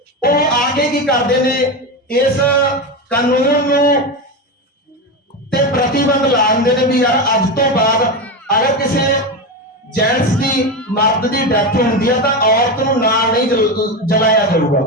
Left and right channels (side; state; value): both; normal; correlation 0.17